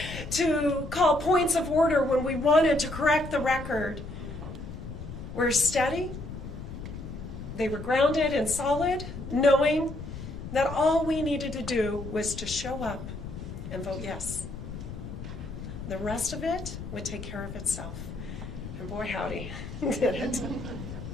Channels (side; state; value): left; noise; rumble, 9 dB below the sound